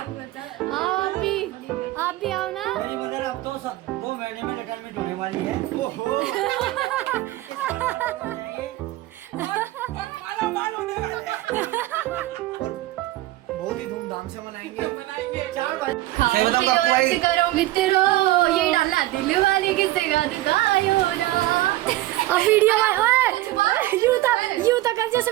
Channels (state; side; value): quieter; left; 16.7 dB